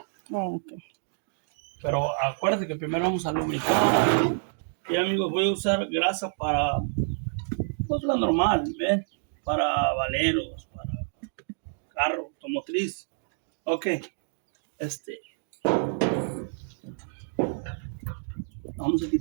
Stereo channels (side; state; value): left; silent; digital silence